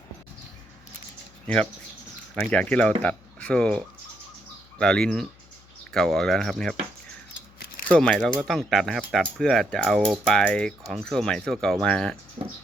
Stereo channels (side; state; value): left; noise; hum, 27 dB below the sound